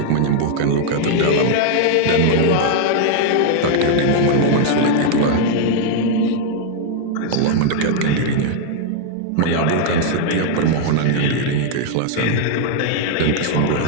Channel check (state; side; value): different; both; correlation 0.00